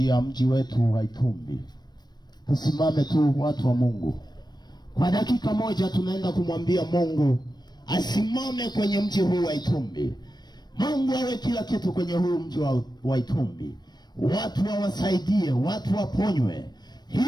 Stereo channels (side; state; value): right; late; 0.20 ms